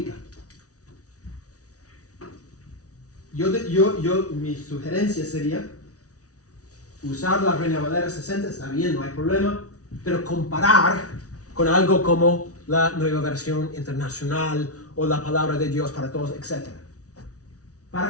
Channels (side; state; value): right; late; 0.67 ms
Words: Mi sugerencia sería usar la Reina Valera 60, está bien, no hay problema, pero comparar con algo como la Nueva Versión Internacional o la Palabra de Dios para Todos, etc.